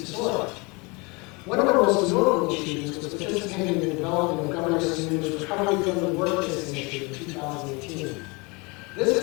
disorder. One of her most notable achievements was participating in the development of Governor Sununu's Recovery Friendly Workplace Initiative in 2018. This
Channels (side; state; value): right; quieter; 27.9 dB